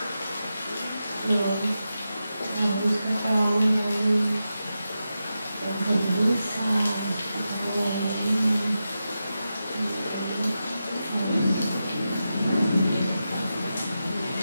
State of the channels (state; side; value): inverted; both; correlation -0.90